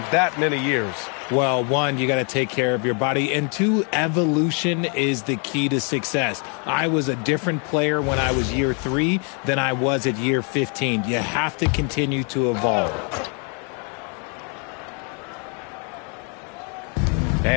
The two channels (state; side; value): quieter; right; 37.5 dB